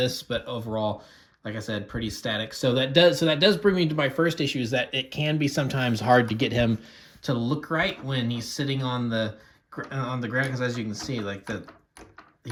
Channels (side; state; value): both; identical; correlation 1.00